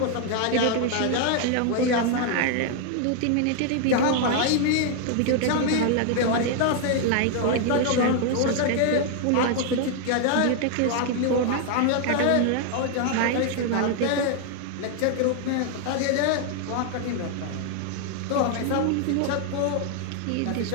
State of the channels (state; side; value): different; both; correlation 0.00